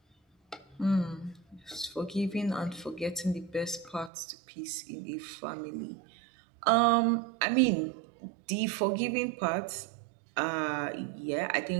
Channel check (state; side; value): drops out; left; at 4.1 s